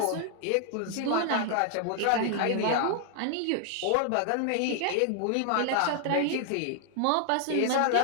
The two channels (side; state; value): both; different; correlation 0.00